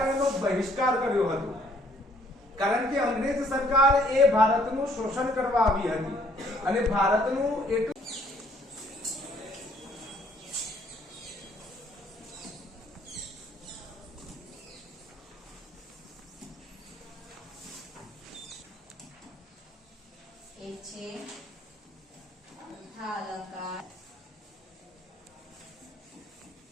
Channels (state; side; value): normal; both; correlation 0.63